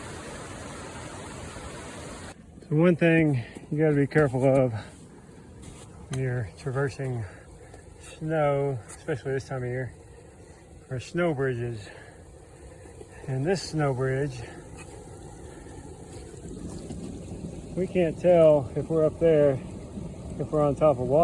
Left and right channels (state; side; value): identical; both; correlation 1.00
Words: So one thing you got to be careful of when you're traversing snow, especially this time of year, are snow bridges. And this snow bridge, we can't tell if we're up there, if we're on top of